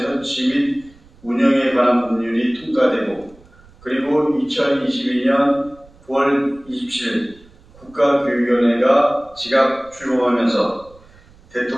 및 운영에 관한 법률이 통과되고, 그리고 2022년 9월 27일 국가교육위원회가 즉각 출범하면서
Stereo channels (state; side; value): noise; right; rumble, 26 dB below the sound